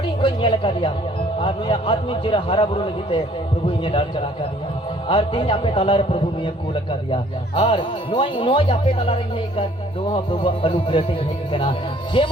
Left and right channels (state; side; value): normal; both; correlation 0.58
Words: कोई नेल का दिया और नुई आत्मिक जिरा हरा बुरु लगीते प्रभु इने डाल चला का दिया और तीन आपे तलारे प्रभु ने कूल का दिया और नोई आपे तलारे ये कर दोहा प्रभु अनुग्रह से है कना